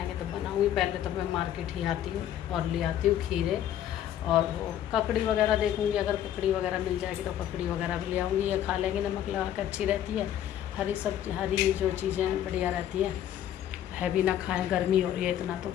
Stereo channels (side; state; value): right; quieter; 11.1 dB